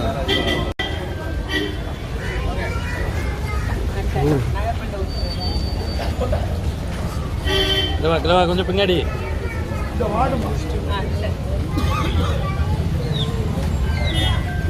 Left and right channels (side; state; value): both; identical; correlation 1.00